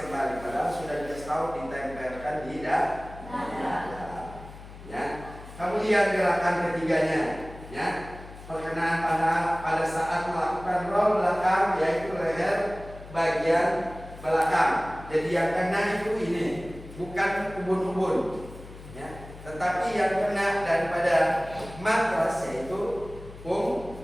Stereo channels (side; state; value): left; noise; hum, 16 dB below the sound